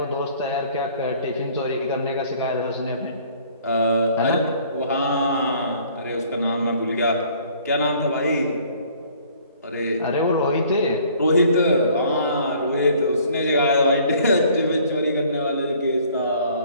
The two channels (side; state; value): both; inverted; correlation -0.57